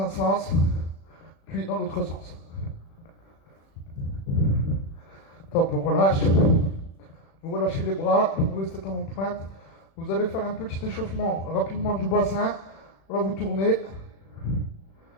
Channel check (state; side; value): late; right; 36 ms